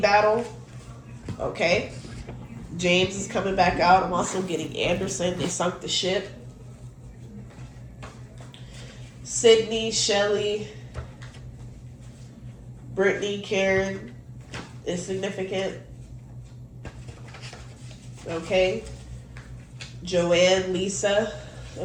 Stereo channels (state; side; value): identical; both; correlation 1.00